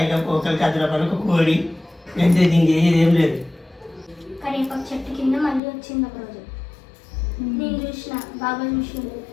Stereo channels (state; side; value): drops out; right; at 5.6 s